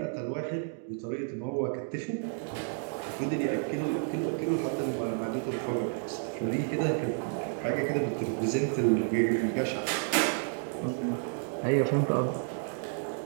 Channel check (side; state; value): left; silent; 57 dB below the other